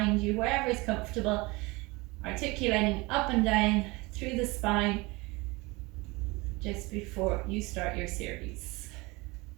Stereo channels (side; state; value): left; quieter; 24.3 dB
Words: you, wherever is comfortable, articulating up and down through the spine just before you start your series.